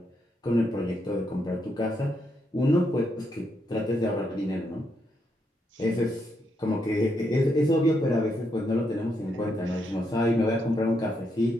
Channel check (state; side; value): normal; both; correlation 0.79